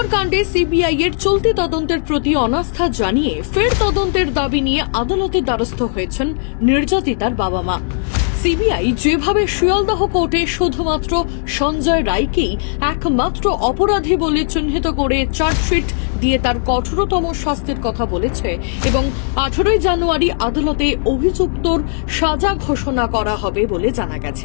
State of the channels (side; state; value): right; silent; digital silence